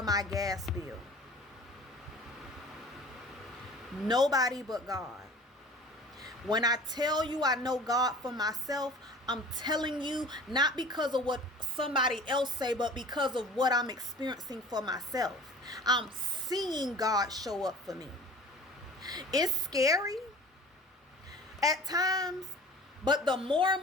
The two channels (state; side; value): normal; both; correlation 0.43